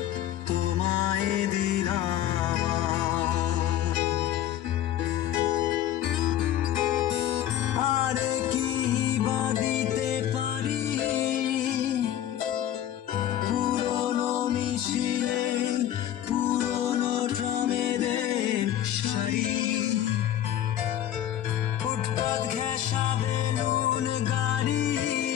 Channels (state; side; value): quieter; right; 11.6 dB